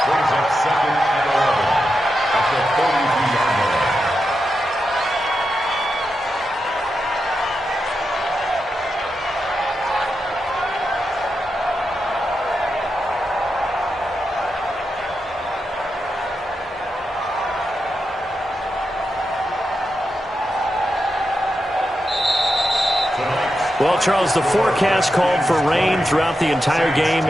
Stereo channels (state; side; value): normal; both; correlation 0.87